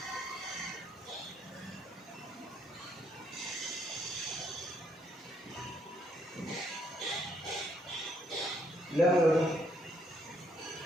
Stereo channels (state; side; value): normal; both; correlation 0.71